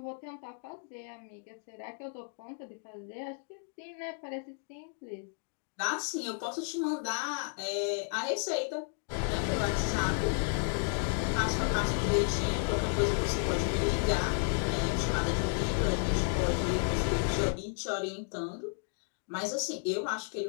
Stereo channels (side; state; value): right; silent; 56 dB below the other